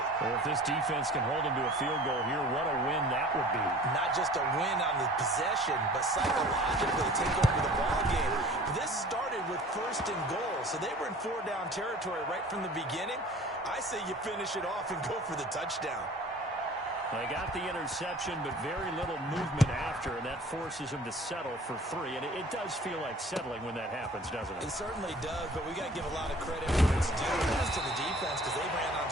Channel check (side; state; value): both; normal; correlation 0.47